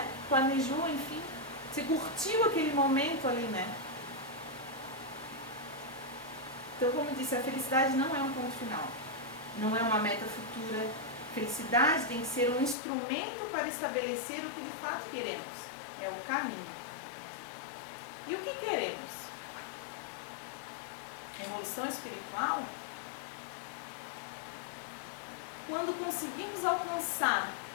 planejou, enfim. Você curtiu aquele momento ali, né? Então, como eu disse, a felicidade não é um ponto final. Não é uma meta futura. Felicidade tem que ser um instrumento para estabelecer o que de fato queremos. É o caminho. E o que queremos? Evolução espiritual? Quando conseguimos alcançar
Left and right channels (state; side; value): drops out; right; at 12.8 s